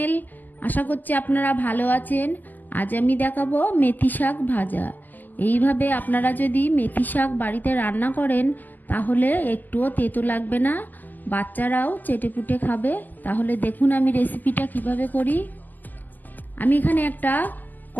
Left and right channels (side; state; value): right; late; 0.085 ms